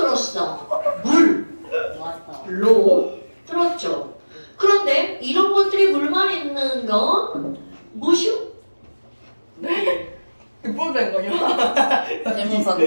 왔어. 물로 들었죠. 그런데 이런 것들이 물만 있는 건 무엇이요? 뽀된 거요? 태무산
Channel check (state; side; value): inverted; both; correlation -1.00